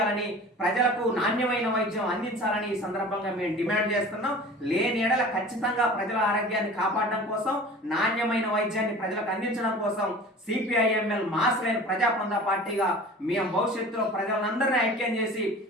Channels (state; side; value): normal; both; correlation 0.41